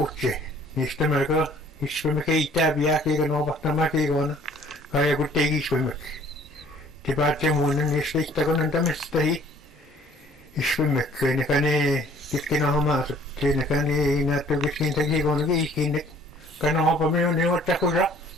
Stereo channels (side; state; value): both; normal; correlation 0.56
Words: Niistä melko iskumme keittää piää kiikon opahtamaan kiikon. Kaja kun teki iskummeksi. Te päätte muinen niistä istakon antamista hii. Iskummekki, nekä ne kesken homaasut. Nekä ne näyttää keskentä kiikon kiikinne. Kana hopamme on ne ottakusa.